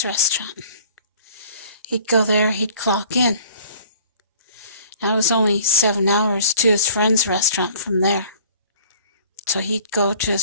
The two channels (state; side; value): inverted; both; correlation -0.50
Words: restaurant. He'd go there, he'd clock in. Now it was only 7 hours to his friend's restaurant from there. So he'd go to